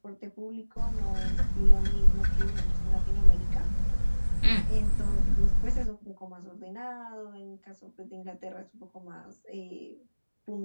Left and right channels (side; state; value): both; inverted; correlation -1.00